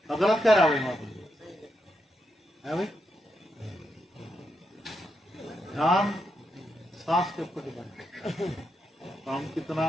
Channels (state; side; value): normal; both; correlation 0.83